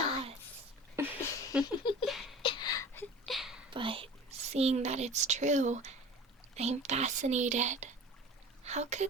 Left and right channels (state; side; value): normal; both; correlation 0.40